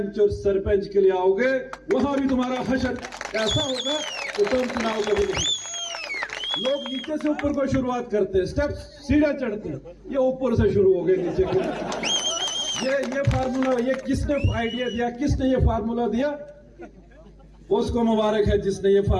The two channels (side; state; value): both; identical; correlation 1.00